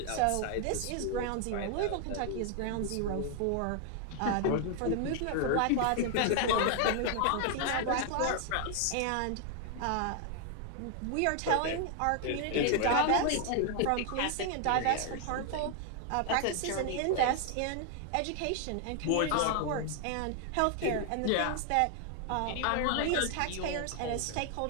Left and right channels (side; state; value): both; different; correlation 0.00